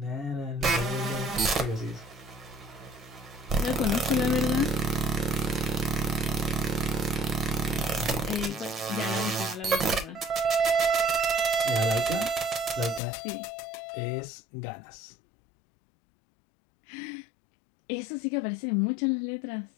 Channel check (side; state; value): right; drops out; at 13.0 s